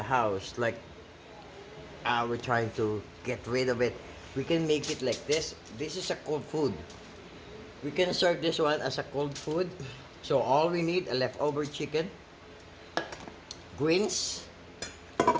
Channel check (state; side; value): identical; both; correlation 1.00